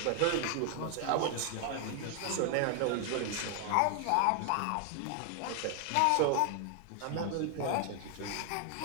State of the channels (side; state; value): both; different; correlation 0.00